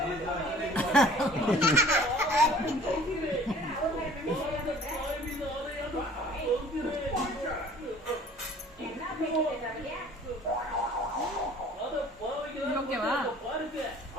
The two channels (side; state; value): both; normal; correlation 0.50